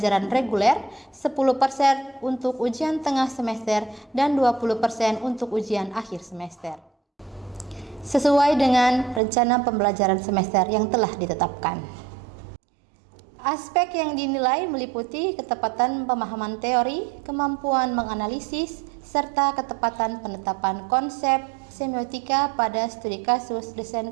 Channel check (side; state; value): left; drops out; at 9.2 s